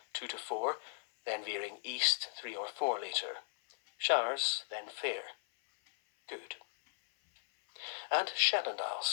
2 to 4, then veering east 3 or 4 later. Showers, then fair. Good. And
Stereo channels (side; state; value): right; silent; 53 dB below the other